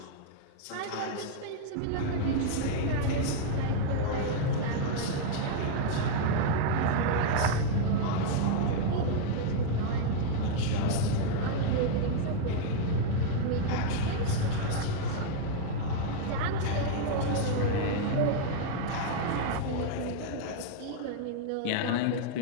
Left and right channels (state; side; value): different; both; correlation -0.01